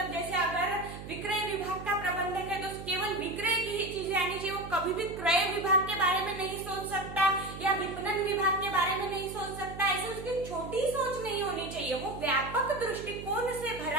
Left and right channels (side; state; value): right; noise; hum, 11 dB below the sound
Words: जैसे अगर विक्रय विभाग का प्रबंधक है तो केवल विक्रय की ही चीजें आनी चाहिए, वो कभी भी क्रय विभाग के बारे में नहीं सोच सकता या विपणन विभाग के बारे में नहीं सोच सकता। ऐसे उसकी छोटी सोच नहीं होनी चाहिए, वो व्यापक दृष्टिकोण से